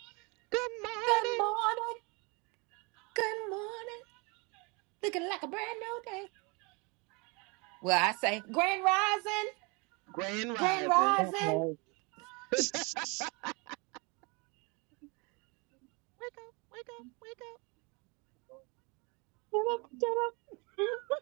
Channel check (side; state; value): left; quieter; 29.9 dB